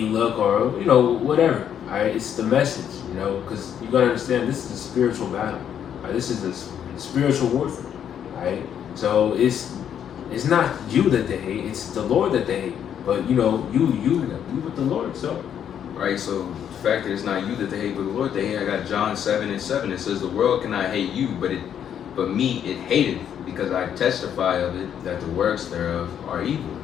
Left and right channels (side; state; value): right; quieter; 9.1 dB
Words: look or whatever. Right? It's the message, because you gotta understand this is a spiritual battle. Right? This is a spiritual warfare, right? So it's not you that they hate; it's the Lord that they hate. But you with the Lord, so. Right. So the fact that it's not you that they hate, but the Lord they hate. I got John 7:7. It says, "The world cannot hate you, but me it hateth, because I testify of it that the works thereof are evil."